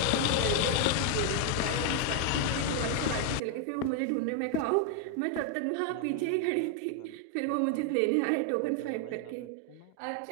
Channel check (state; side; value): different; both; correlation 0.00